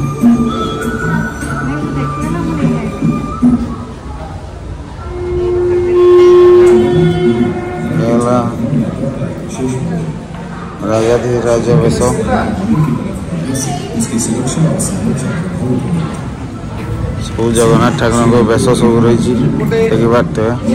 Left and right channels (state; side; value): identical; both; correlation 1.00